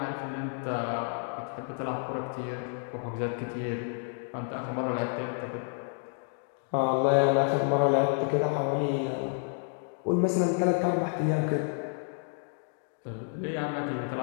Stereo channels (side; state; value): right; silent; 58 dB below the other